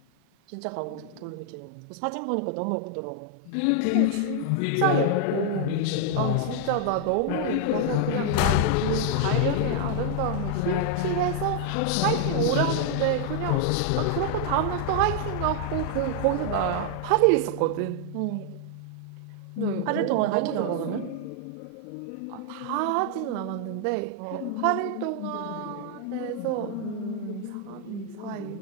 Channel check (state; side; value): different; both; correlation 0.00